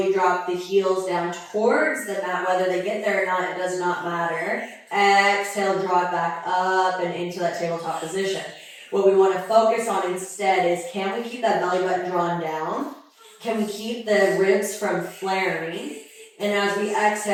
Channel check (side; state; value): both; identical; correlation 1.00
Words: drop the heels down towards the mat. Whether they get there or not, it does not matter. Exhale, draw it back up and into that tabletop position. What we want to focus on instead is, can we keep that belly button drawn down? Can we keep the ribs from flaring? And as we